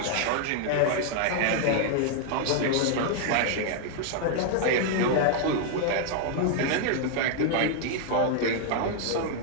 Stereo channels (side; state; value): both; different; correlation 0.00